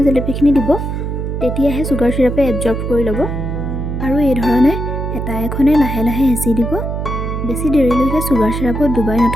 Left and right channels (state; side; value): noise; right; hum, 3 dB below the sound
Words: জেলেপিখিনি দিব, তেতিয়াহে চুগাৰ চিৰাপে এবজৰ্ব কৰি ল'ব। আৰু এই ধৰণে হেতা এখনে লাহে লাহে হেঁচি দিব। বেছি দেৰিলৈকে চুগাৰ চিৰাপত ডুবাই